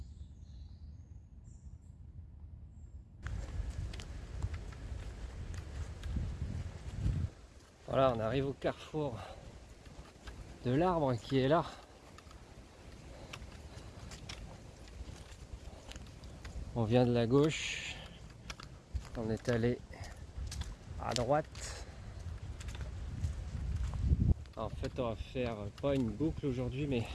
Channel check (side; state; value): both; identical; correlation 1.00